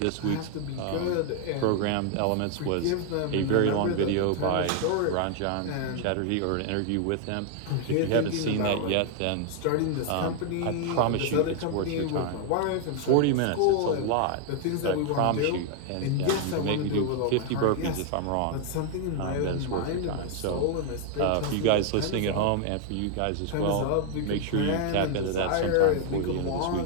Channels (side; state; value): both; different; correlation 0.00